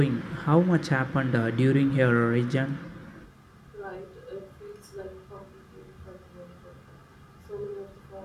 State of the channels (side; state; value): both; identical; correlation 1.00